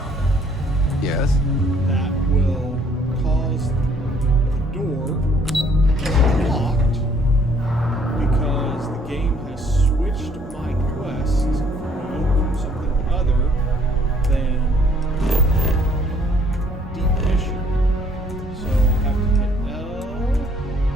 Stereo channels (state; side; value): normal; both; correlation 0.62